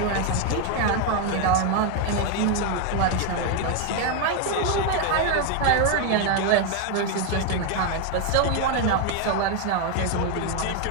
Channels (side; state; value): both; different; correlation 0.01